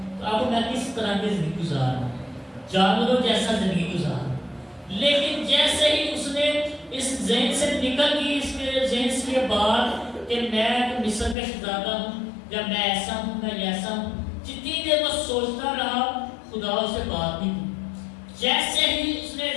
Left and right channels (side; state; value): right; drops out; at 11.4 s